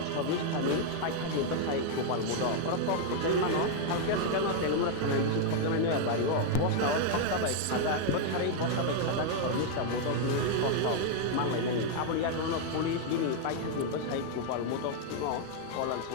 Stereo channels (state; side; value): different; both; correlation 0.00